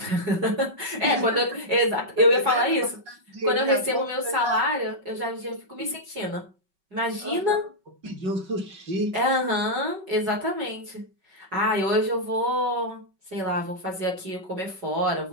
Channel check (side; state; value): left; late; 5.3 ms